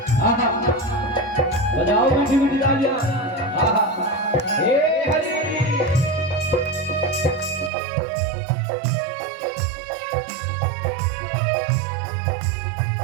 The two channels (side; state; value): left; drops out; at 7.7 s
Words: आहा बजाओ मीठी मीठी तालियां, आहा ए हरि